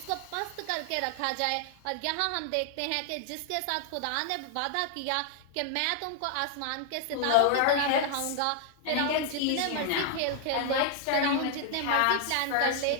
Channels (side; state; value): both; different; correlation 0.00